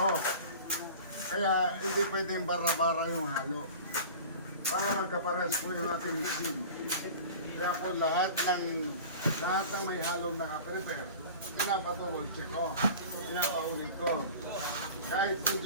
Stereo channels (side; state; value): both; inverted; correlation -0.38